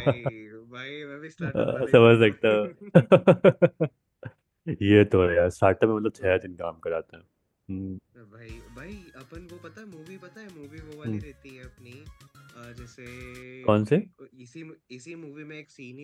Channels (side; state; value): both; identical; correlation 1.00